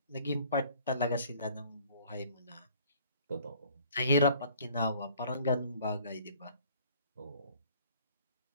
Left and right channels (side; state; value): both; inverted; correlation -0.55